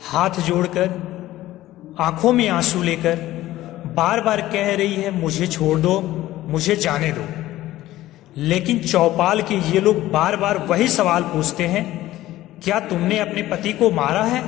हाथ जोड़कर, आंखों में आंसू लेकर बार बार कह रही है, मुझे छोड़ दो, मुझे जाने दो। लेकिन चौपाल के ये लोग बार बार वही सवाल पूछते हैं, क्या तुमने अपने पति को मारा है?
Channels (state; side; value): quieter; right; 15.4 dB